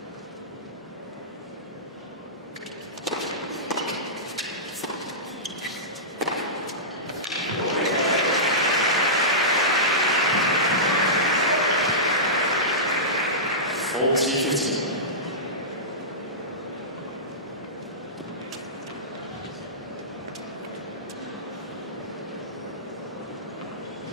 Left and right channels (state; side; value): normal; both; correlation -0.18